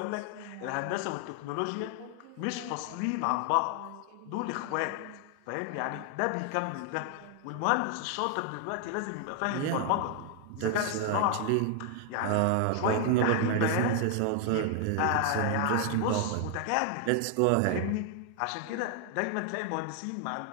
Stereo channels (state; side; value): different; both; correlation 0.00